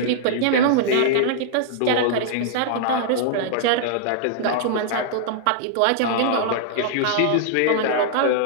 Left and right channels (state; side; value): different; both; correlation -0.01